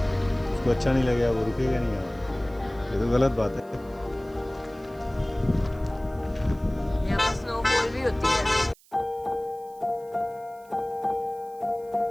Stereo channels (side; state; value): right; noise; hiss, 28 dB below the sound